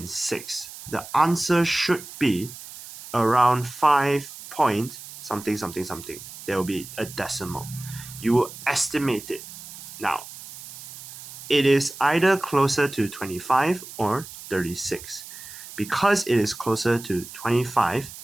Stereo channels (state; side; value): noise; right; hiss, 14 dB below the sound